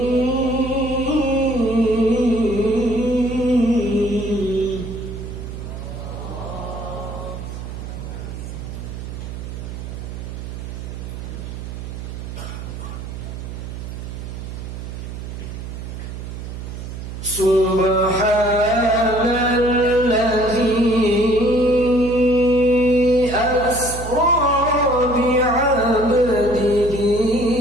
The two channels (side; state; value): right; noise; hum, 9 dB below the sound